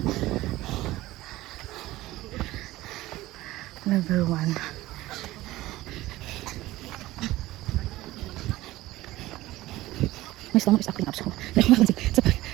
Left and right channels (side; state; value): left; quieter; 17.2 dB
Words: Level 1. My stomach is acting up, so